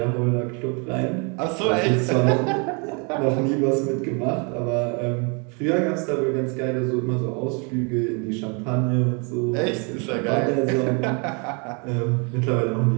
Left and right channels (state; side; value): quieter; left; 34.3 dB